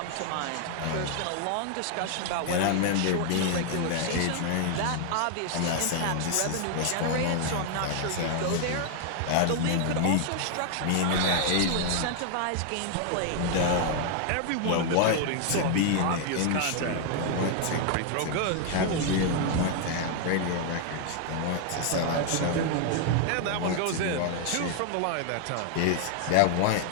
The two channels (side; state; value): both; different; correlation 0.00